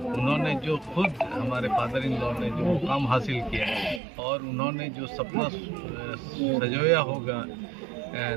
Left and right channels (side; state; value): left; drops out; at 4.0 s